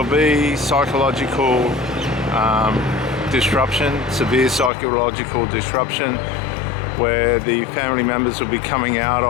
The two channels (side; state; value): right; drops out; at 4.7 s